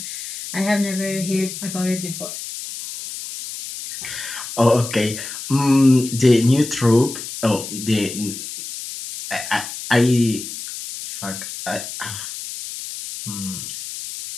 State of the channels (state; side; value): noise; left; hiss, 9 dB below the sound